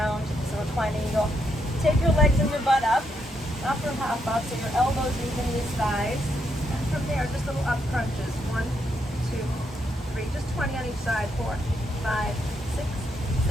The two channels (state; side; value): normal; both; correlation 0.78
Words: so reclining eagle. Take your legs and your butt up, upper half up, so your elbows meet the knees, thighs. And from there, just little up crunches. 1, 2, 3, just 20 on each side. 4, 5, 6,